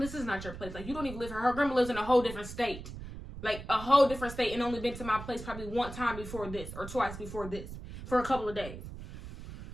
is not your place. Like, you don't even live here. Her grandma lives in a whole different state. like a whole different state, and only been to my place probably one time before this or twice before this for a couple of days.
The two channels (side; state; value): right; noise; rumble, 11 dB below the sound